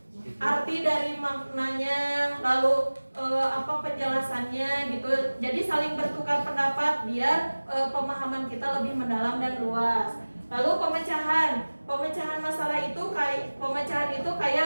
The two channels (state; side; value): inverted; both; correlation -1.00